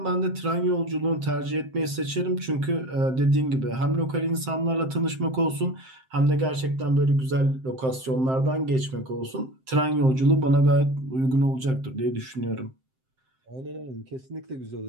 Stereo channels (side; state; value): left; late; 7.7 ms